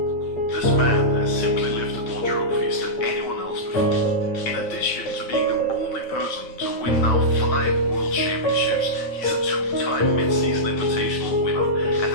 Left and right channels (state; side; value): late; right; 9.1 ms